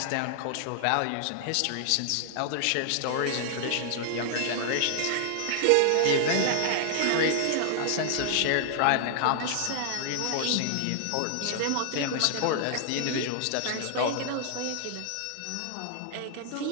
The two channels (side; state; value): both; different; correlation 0.00